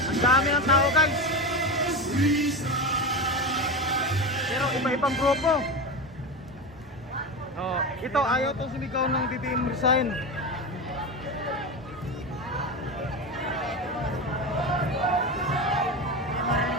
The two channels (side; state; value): both; normal; correlation 0.21